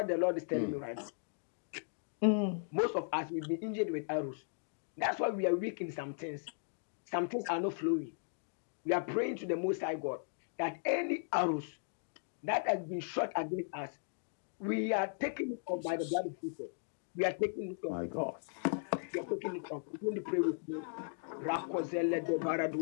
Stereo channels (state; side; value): silent; right; digital silence